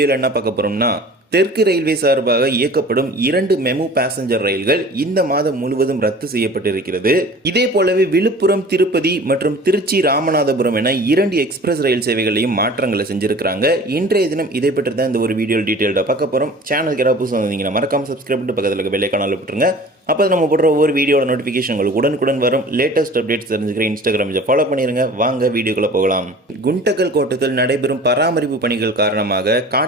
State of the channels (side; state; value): both; normal; correlation 0.43